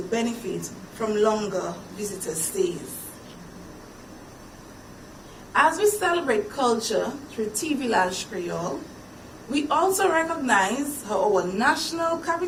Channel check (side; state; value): both; identical; correlation 1.00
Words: benefit from longer visitor stays. As we celebrate culture through Vilaj Kweyol, we also recognize how our national